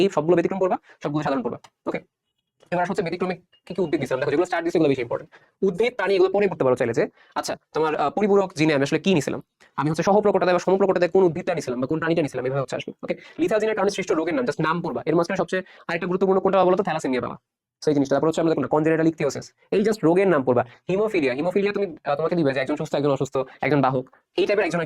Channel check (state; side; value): identical; both; correlation 1.00